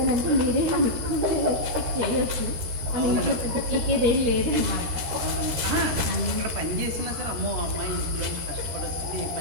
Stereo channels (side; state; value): left; late; 13 ms